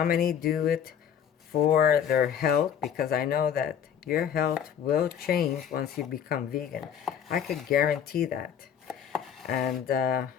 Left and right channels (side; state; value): right; quieter; 8.6 dB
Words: many do it for their health, because I know that your health will change once you become vegan. I could guarantee that. And